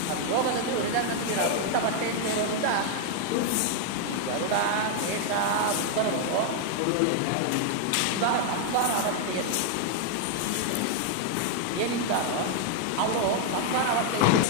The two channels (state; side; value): different; both; correlation 0.00